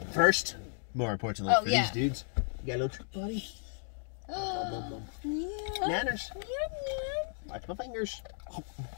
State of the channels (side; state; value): right; silent; digital silence